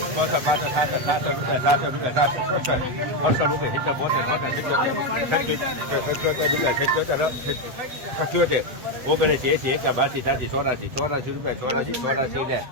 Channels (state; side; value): late; left; 7.9 ms